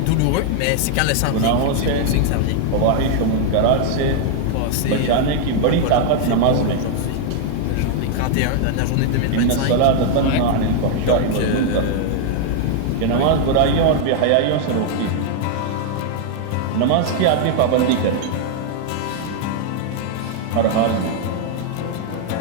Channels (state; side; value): different; both; correlation 0.00